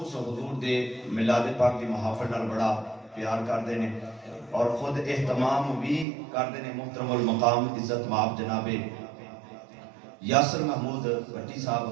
حضور دے میلاد پاک دی محافل نال بڑا پیار کردے نے اور خود اہتمام بھی کردے نے محترم المقام عزت مآب جناب یاسر محمود بٹی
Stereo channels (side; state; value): left; drops out; at 6.1 s